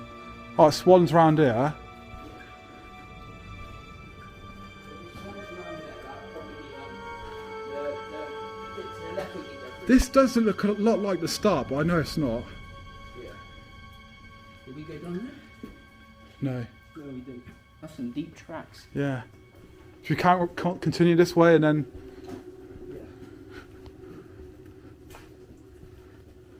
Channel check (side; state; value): both; identical; correlation 1.00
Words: Oh, swans round here. This does look a lot like the start, but I know it's not. Yeah. Did we go down there? No. No, we didn't. That's some deep tracks. Yeah. Should we can't continue this way and then